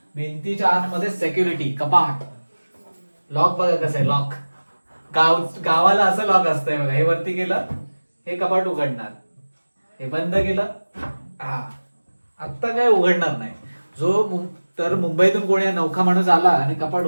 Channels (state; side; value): inverted; both; correlation -1.00